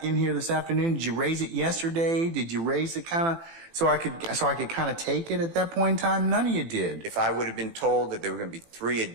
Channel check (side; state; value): left; late; 18 ms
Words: in here this afternoon? Did you raise it yesterday? Did you raise it kind of so I could kind of take it at that point in time? None of you did. If I would have been told that there were going to be 3